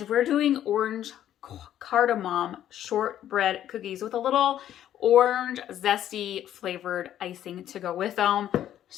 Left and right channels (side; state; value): right; quieter; 11.4 dB